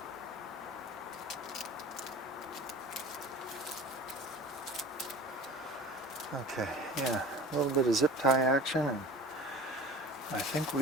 Okay, yeah, a little bit of zip tie action, and I think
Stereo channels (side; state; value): both; normal; correlation 0.41